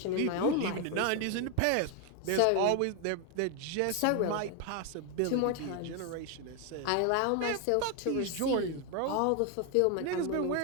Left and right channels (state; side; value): different; both; correlation 0.01